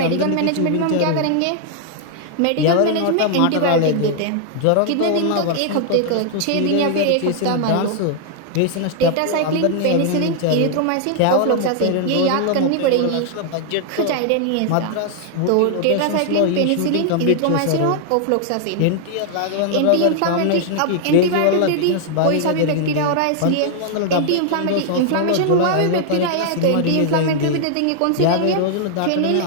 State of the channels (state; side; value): different; both; correlation -0.01